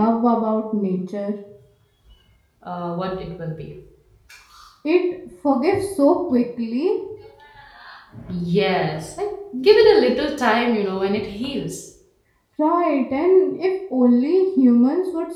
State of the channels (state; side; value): identical; both; correlation 1.00